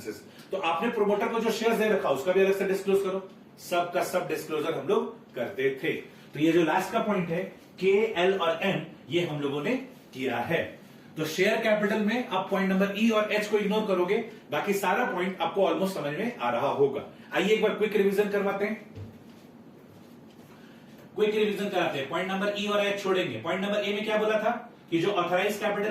तो आपने प्रोमोटर को जो शेयर्स दे रखा उसका भी अलग से डिस्क्लोज करो। सब का सब डिस्क्लोजर हम लोग करते थे। तो ये जो लास्ट का पॉइंट है के, एल और एम, ये हम लोगों ने किया है। तो शेयर कैपिटल में आप पॉइंट नंबर ई और एच को इग्नोर करोगे, बाकी सारा पॉइंट आपको ऑलमोस्ट समझ में आ रहा होगा। आइए एक बार क्विक रिवीजन करवाते हैं, क्विक रिवीजन कराते हैं। पॉइंट नंबर ई और एच छोड़ेंगे। पॉइंट नंबर ए में क्या बोला था कि जो ऑथराइज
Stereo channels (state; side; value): identical; both; correlation 1.00